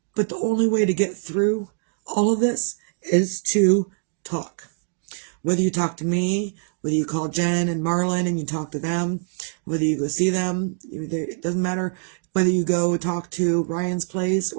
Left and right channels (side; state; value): left; silent; digital silence